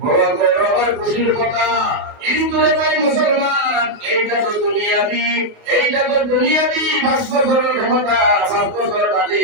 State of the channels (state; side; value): late; left; 29 ms